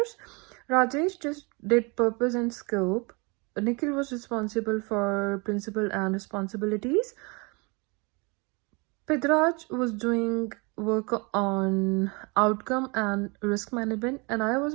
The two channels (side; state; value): left; quieter; 29.5 dB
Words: Rajesh just did purpose and scope. Nikhil was responsible for principle and responsibilities. Pidraj was doing work on outcome and risk management, and I